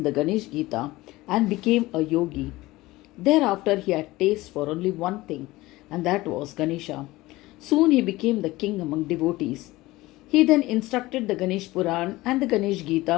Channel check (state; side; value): quieter; right; 19.1 dB